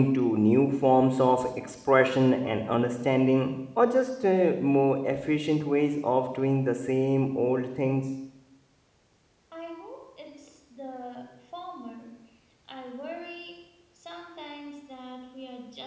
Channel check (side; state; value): both; identical; correlation 1.00